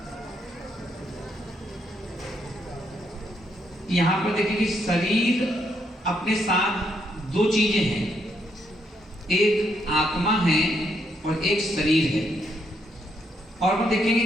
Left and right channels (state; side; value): normal; both; correlation 0.76